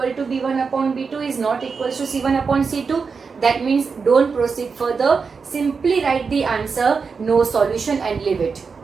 to b1 upon b2 is not equals to c1 upon c2. That means don't proceed further. Simply write the answer, no solution, and leave it.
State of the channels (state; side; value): quieter; left; 5.2 dB